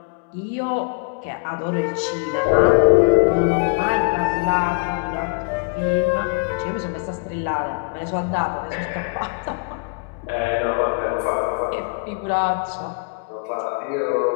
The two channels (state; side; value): quieter; right; 36.3 dB